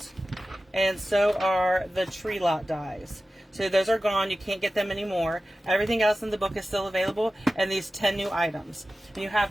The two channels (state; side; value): normal; both; correlation 0.95